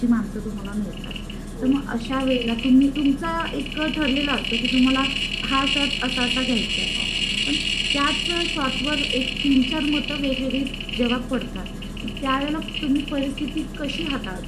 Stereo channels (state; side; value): identical; both; correlation 1.00